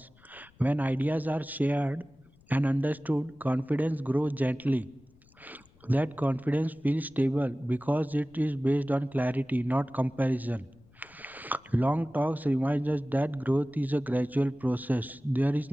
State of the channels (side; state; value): left; noise; rumble, 29 dB below the sound